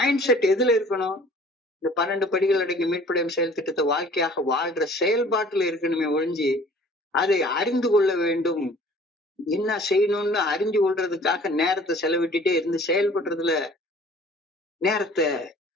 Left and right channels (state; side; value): normal; both; correlation 0.50